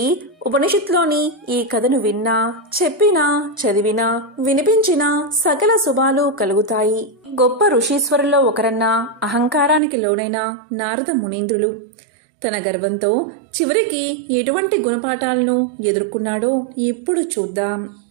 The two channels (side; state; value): left; drops out; at 9.8 s